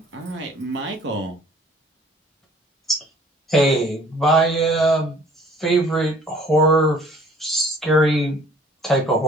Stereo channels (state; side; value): normal; both; correlation 0.54